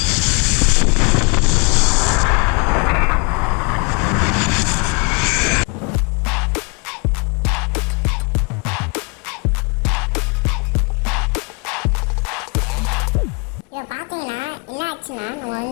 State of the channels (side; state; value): right; quieter; 33.8 dB